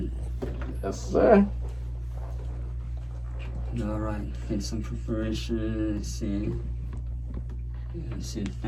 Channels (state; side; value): identical; both; correlation 1.00